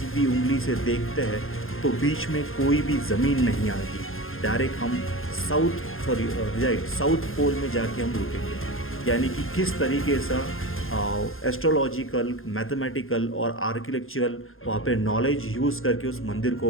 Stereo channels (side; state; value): right; late; 0.60 ms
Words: उंगली से देखते हैं तो बीच में कोई भी ज़मीन नहीं आएगी। डायरेक्ट हम साउथ पोल में जाके हम रुकेंगे। यानी कि किस तरीके से एस्ट्रोलॉजिकल, मैथमेटिकल और आर्किटेक्चरल वहाँ पे नॉलेज यूज़ करके उस मंदिर